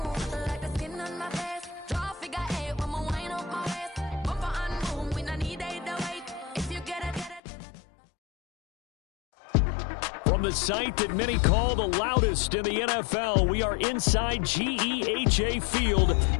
like the skin on my face. Draw figure 8 when we wind up my waist. Bumper and boom, we no need either wait. If you get it. From the site that many call the loudest in the NFL, we are inside GEHA Field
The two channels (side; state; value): right; drops out; at 7.4 s